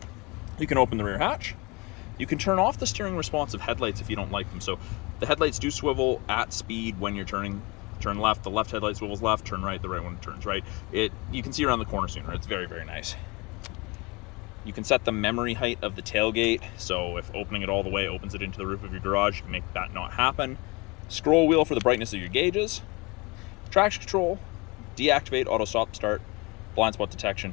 You can open the rear hatch. You can turn off the steering responsive headlights if you don't like them. So the headlights do swivel at speed when you're turning. Turn left, the left headlight swivels left, turn right, the right one turns right. You can see around the corner sooner. It's very, very nice. You can set the memory height of the tailgate. So if opening it all the way opens it into the roof of your garage, you can make that not happen. Scroll wheel for the brightness of your gauges. Traction control, deactivate auto stop start, blind spot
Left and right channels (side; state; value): right; quieter; 26.3 dB